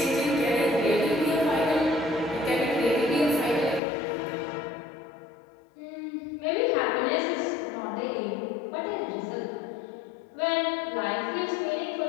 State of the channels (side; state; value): right; drops out; at 3.8 s